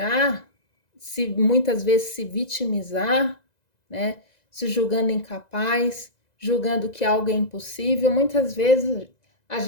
se muitas vezes se vitimizar, né? Se julgando incapaz, julgando que algo é impossível. Muitas vezes a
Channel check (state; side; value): late; right; 2.0 ms